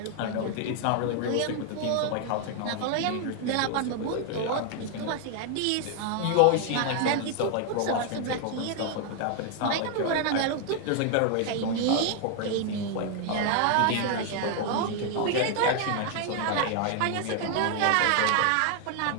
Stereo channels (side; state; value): both; different; correlation 0.00